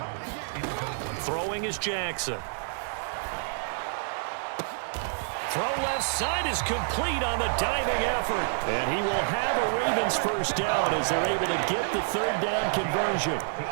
Throwing is Jackson. Throw left side is complete on the diving effort. And he will have a Ravens first down as they're able to get the third down conversion.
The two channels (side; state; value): left; silent; digital silence